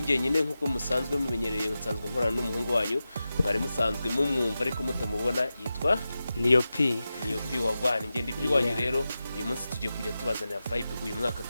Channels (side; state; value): both; inverted; correlation -0.93